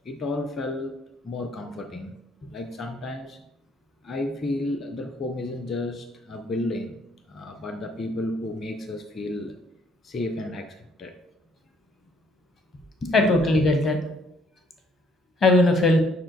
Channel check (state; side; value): normal; both; correlation 0.65